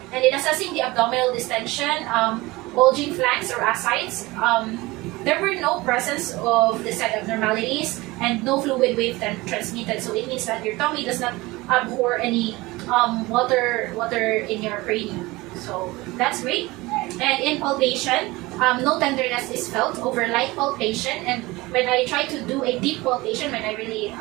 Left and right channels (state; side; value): quieter; left; 21.2 dB